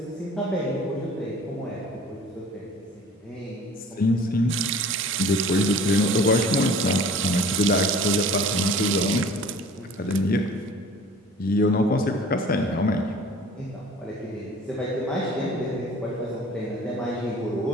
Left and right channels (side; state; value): both; normal; correlation 0.46